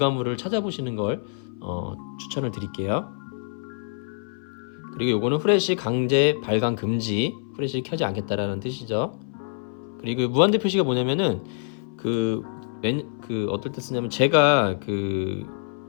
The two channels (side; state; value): right; silent; 59 dB below the other